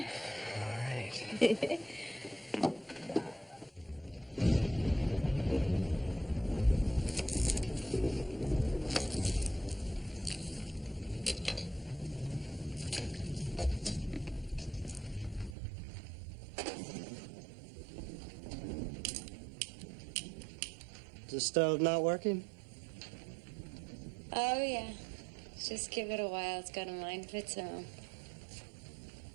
All right. Is the stove not working? Oh, yeah. Just give it a while. It's got a mind of its own.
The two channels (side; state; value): left; drops out; at 15.6 s